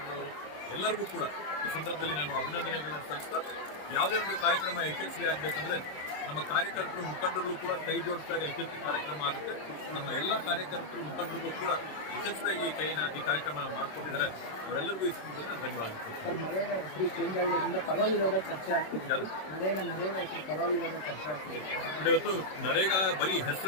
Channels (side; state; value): right; late; 26 ms